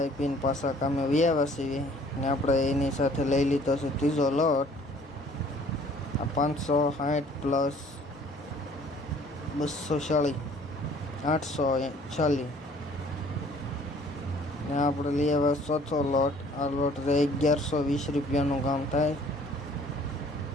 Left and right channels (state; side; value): normal; both; correlation 0.55